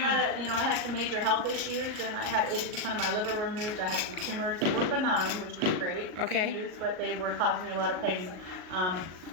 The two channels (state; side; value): late; left; 38 ms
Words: I had some major health issues, and I had 80% of my liver removed. I had some tumors. They were benign, which was great Okay. news, but they were causing me a lot of pain. I